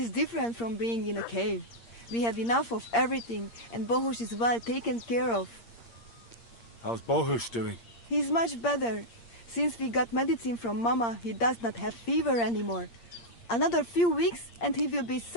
different from being in a cave. We have enough of everything, and Bohush is well taken care of. How's Bohush doing? He's much better. Since we got medicine from Mama, he does not have fever anymore. Another few weeks, and he will be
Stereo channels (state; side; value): late; right; 8.6 ms